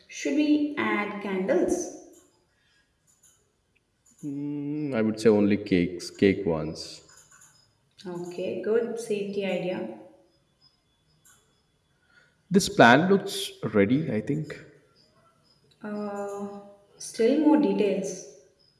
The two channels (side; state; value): both; identical; correlation 1.00